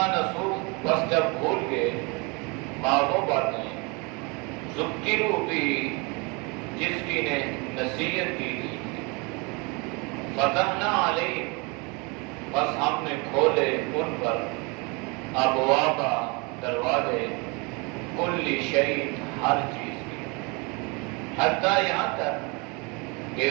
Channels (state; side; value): quieter; left; 29.6 dB